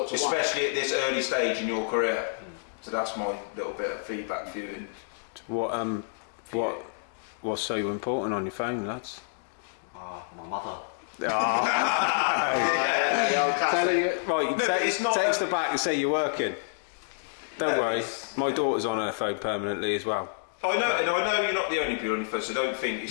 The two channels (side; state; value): right; silent; digital silence